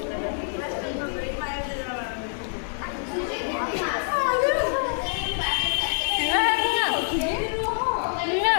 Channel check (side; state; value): right; silent; digital silence